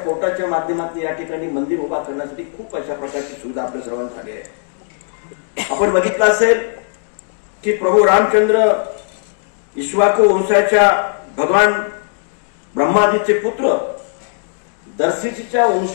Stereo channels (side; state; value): right; silent; digital silence